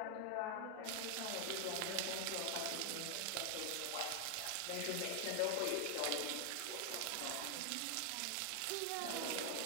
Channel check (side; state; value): both; different; correlation 0.00